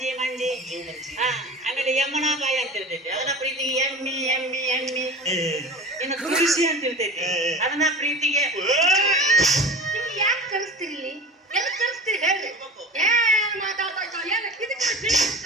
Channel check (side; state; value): both; normal; correlation 0.35